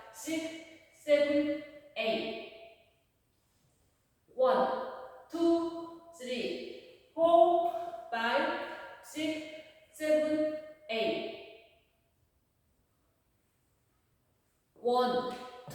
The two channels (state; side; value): identical; both; correlation 1.00